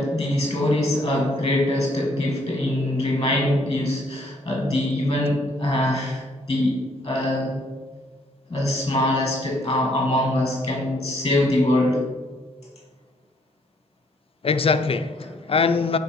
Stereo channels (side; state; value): both; normal; correlation 0.66